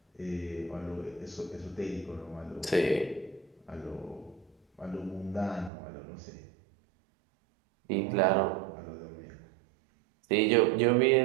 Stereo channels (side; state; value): left; drops out; at 5.7 s